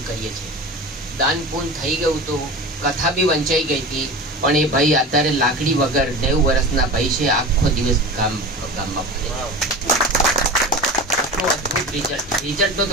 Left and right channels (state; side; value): normal; both; correlation 0.31